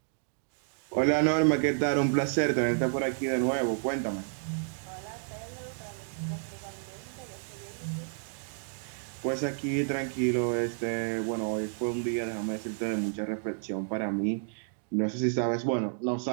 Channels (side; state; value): left; silent; digital silence